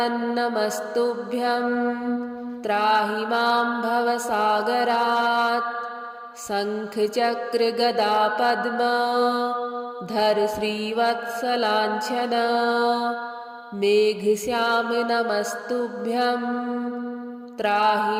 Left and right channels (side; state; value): both; identical; correlation 1.00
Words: नमस्तुभ्यं त्राहि मां भवसागरात्। शङ्खचक्र गदा पद्म धर श्रीवत्सलाञ्छन मेघश्याम नमस्तुभ्यं त्राहि